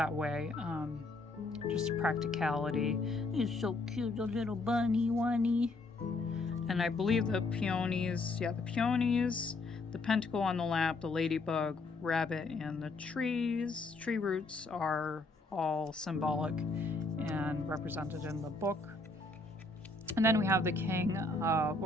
way. Just practicality. He's so cute, a little bunny one-y. And I believe the peonies, the pentacle on the lap, the ladybug, rabbit, and the tree roots are all symbolic and represented in the book. And then we have the king,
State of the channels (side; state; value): right; quieter; 3.3 dB